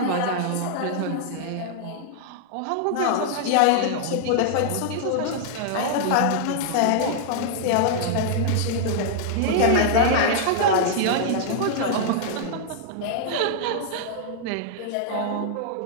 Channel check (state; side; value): different; both; correlation -0.01